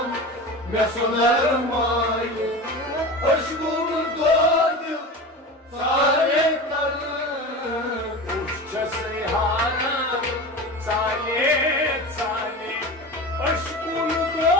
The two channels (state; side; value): normal; both; correlation 0.30